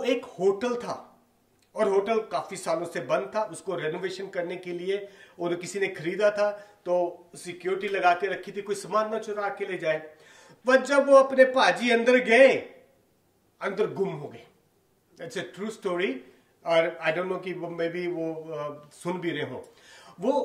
एक होटल था, और होटल काफी सालों से बंद था। उसको रेनोवेशन करने के लिए और किसी ने खरीदा था, तो सिक्योरिटी लगा के रखी थी, कोई सामान ना चुरा के ले जाए। पर जब वो अपने पाजी अंदर गए, अंदर गुम हो गए। इट्स ए ट्रू स्टोरी, और आई डोंट नो कि वो मे बी वो सुन भी रहे हो।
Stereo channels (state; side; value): identical; both; correlation 1.00